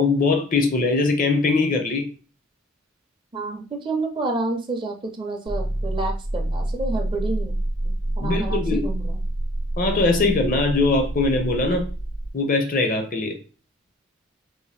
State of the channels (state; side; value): normal; both; correlation 0.52